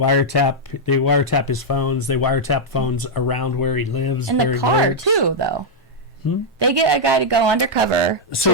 his phones. They wiretap phones around where he lives. In where the he car works. too, though. They get a guy to go undercover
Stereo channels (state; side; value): normal; both; correlation -0.04